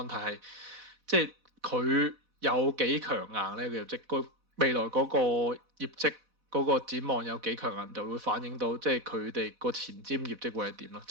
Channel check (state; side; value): late; left; 4.1 ms